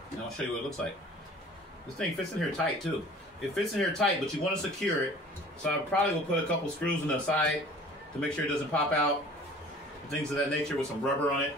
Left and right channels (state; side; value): normal; both; correlation 0.47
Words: And I'll show you what it looks like. This thing fits in here tight, too. It fits in here tight, but you want to secure it. So I probably will put a couple screws on the side to make sure it doesn't pop out. Things of that nature with some rubber on it